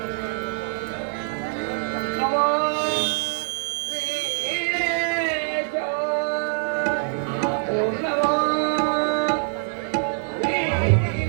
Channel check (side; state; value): left; silent; digital silence